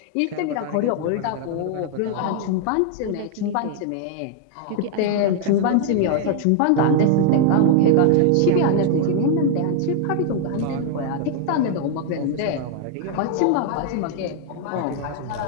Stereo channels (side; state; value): both; different; correlation 0.00